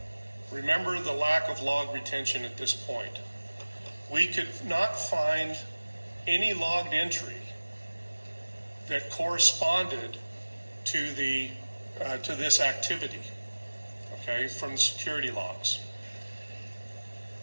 remember the lack of log retention at this point. We could not find any logged entry that corresponded to this activity, okay, from the security logs.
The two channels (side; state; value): both; inverted; correlation -1.00